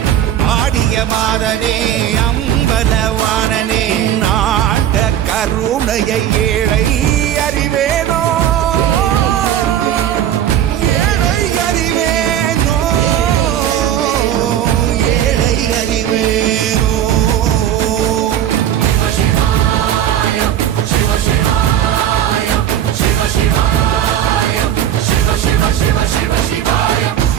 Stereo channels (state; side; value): quieter; left; 10.7 dB